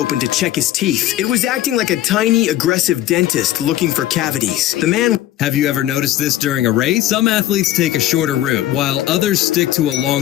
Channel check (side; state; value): right; quieter; 13.7 dB